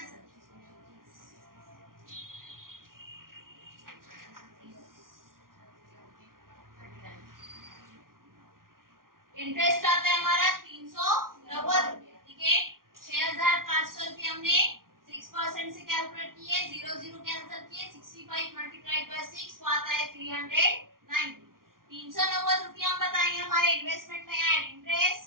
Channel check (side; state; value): left; late; 0.91 ms